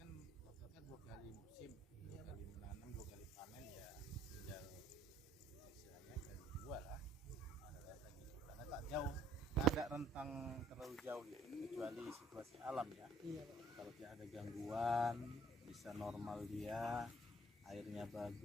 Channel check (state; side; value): normal; both; correlation 0.62